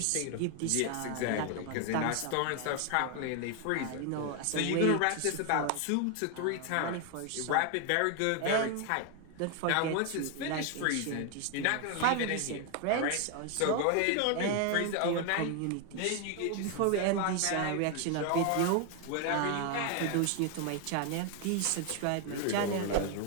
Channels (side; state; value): both; different; correlation 0.01